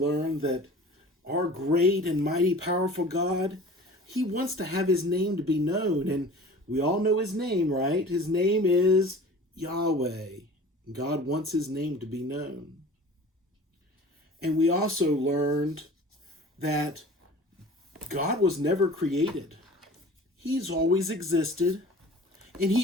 that our great and mighty powerful God, He wants to have His name to be known, and we all know His name, right? His name is Yahweh. God wants His name to be known. And we also learned that God was never created. He's always existed, and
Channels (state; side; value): normal; both; correlation 0.43